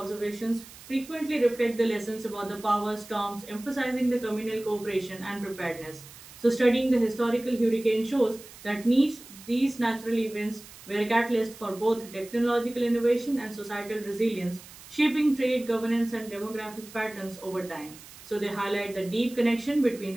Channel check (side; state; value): right; noise; hiss, 18 dB below the sound